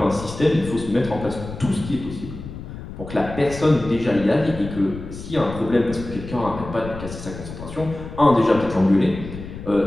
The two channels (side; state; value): left; noise; rumble, 11 dB below the sound